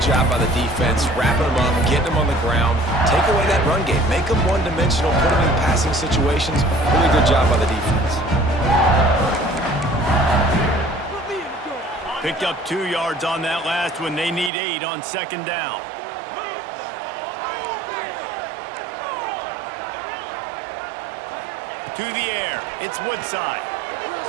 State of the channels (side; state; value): left; drops out; at 14.5 s